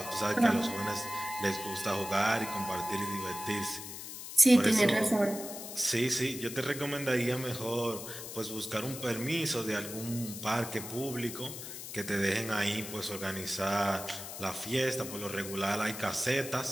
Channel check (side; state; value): left; noise; hiss, 9 dB below the sound